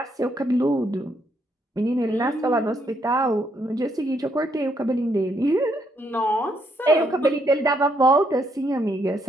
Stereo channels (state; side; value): normal; both; correlation 0.74